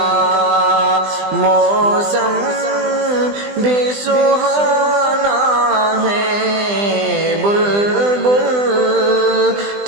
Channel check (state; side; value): late; left; 20 ms